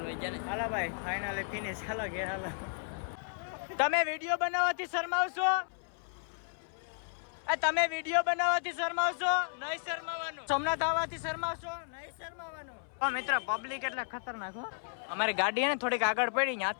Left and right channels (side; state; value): right; silent; 55 dB below the other